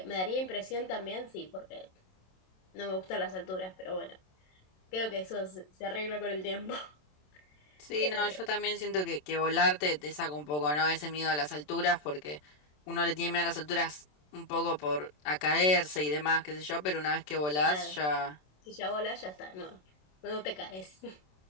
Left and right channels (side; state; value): right; late; 27 ms